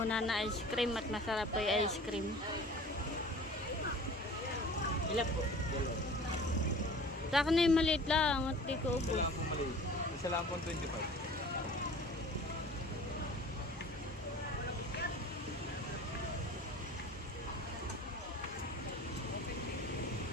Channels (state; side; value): normal; both; correlation 0.43